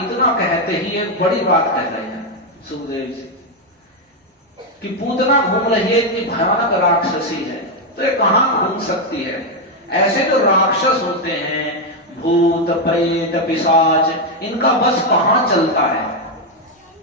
कहते ही एक बड़ी बात कह रहे हैं सुखदेव जी कि पूतना घूम रही है, इतनी भयानक राक्षसी है, तो ये कहां घूम सकती है? ऐसे जो राक्षस होते हैं, भूत प्रेत पिशाच, इनका बस कहां चलता है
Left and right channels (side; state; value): both; normal; correlation 0.03